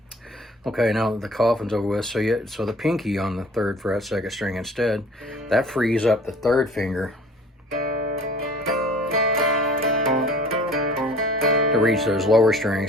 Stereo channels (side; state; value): both; normal; correlation 0.48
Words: Okay, now the coffin's over with, so the pinky on the 3rd fret, 2nd string instead, that frees up the 3rd finger to reach those lower